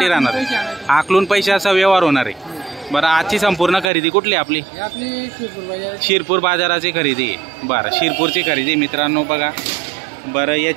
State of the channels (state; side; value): drops out; left; at 3.9 s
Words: राहणार आकलून पैशाचा व्यवहार होणार आहे। बरं आजची संपूर्ण खरेदी कुठली आपली? शिरपूर बाजाराची खरेदी। बरं शिरपूरची खरेदी मित्रांनो बघा। बरं